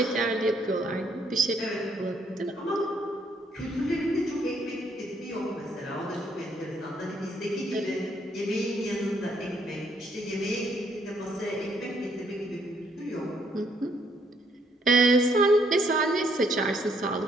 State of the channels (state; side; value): normal; both; correlation 0.69